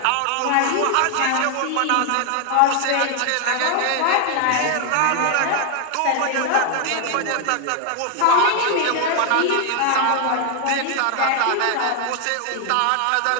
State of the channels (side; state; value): both; different; correlation 0.00